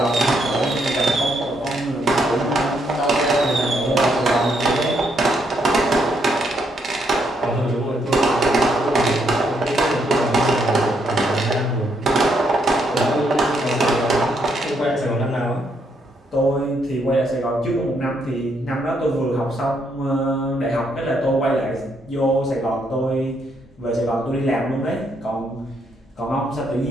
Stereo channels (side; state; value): both; normal; correlation 0.75